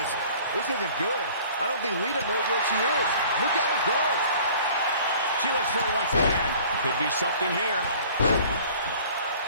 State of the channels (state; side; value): inverted; both; correlation -0.49